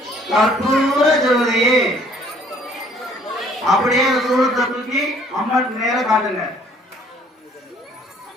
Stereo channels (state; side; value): normal; both; correlation 0.59